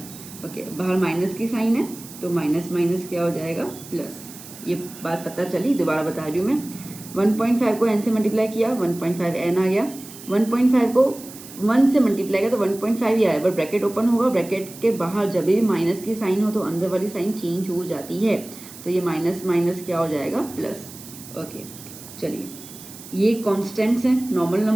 ओके, बाहर माइनस की साइन है तो माइनस माइनस क्या हो जाएगा प्लस। ये बात पता चली, दोबारा बता रही हूँ मैं। 1.5 को n से मल्टीप्लाई किया, 1.5 n आ गया। 1.5 को 1 से मल्टीप्लाई किया तो 1.5 ही आया, पर ब्रैकेट ओपन होगा, ब्रैकेट के बाहर जब भी माइनस की साइन हो तो अंदर वाली साइन चेंज हो जाती है। तो ये माइनस माइनस क्या हो जाएगा प्लस। ओके चलिए, ये कॉन्स्टेंट्स हैं, नॉर्मल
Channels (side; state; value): right; noise; hiss, 16 dB below the sound